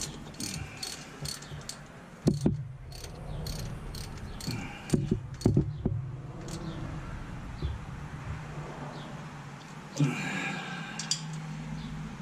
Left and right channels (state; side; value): identical; both; correlation 1.00